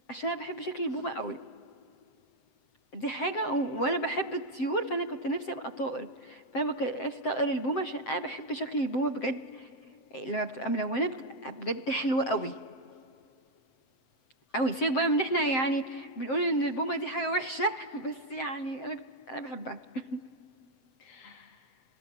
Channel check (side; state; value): right; late; 7.7 ms